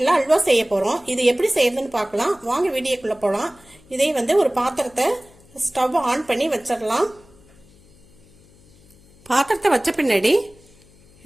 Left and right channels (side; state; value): left; noise; hum, 28 dB below the sound